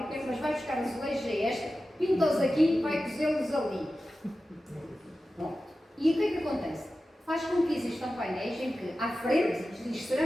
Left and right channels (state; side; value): normal; both; correlation 0.94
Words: mas vai buscar azulejos a esta, pinta-os aqui e vai cozê-los ali. Bom, e o que é que acontece? faz com que existam painéis em que, à frente, diz